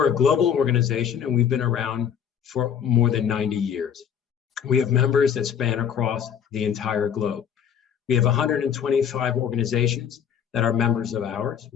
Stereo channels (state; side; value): quieter; right; 8.2 dB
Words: a global organization and we've been around for more than 90 years. We have members that span across the entire globe. We have 125 organizations that are members of ours.